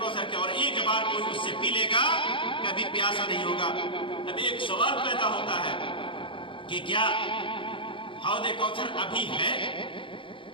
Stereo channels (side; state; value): right; late; 0.25 ms